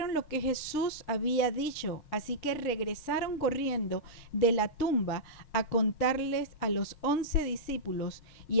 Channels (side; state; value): right; late; 5.4 ms